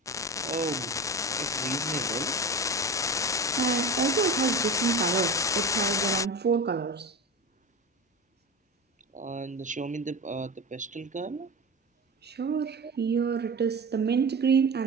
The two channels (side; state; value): both; normal; correlation 0.28